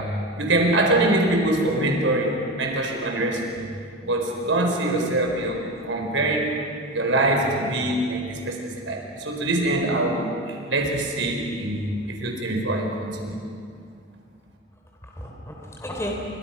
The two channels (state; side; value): normal; both; correlation 0.22